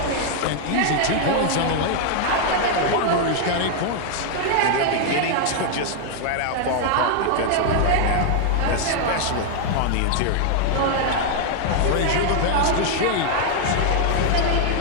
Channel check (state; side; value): different; both; correlation 0.00